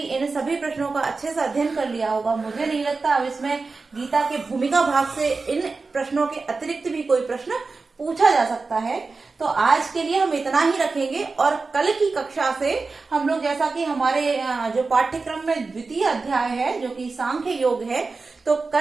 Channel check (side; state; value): left; quieter; 4.1 dB